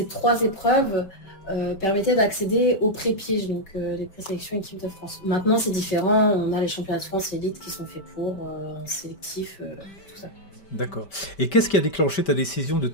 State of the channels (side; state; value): right; late; 5.1 ms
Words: 3 épreuves permettaient d'accéder aux pré-pièges, donc les présélections équipe de France. Maintenant, c'est différent. On a les championnats de France élite qui sont faits pour sélectif, tout ça. D'accord. Et qu'est-ce qui a déclenché ta décision de